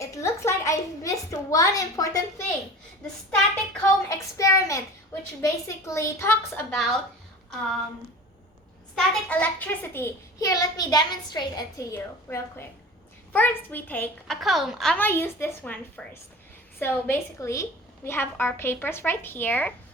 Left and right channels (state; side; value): normal; both; correlation 0.38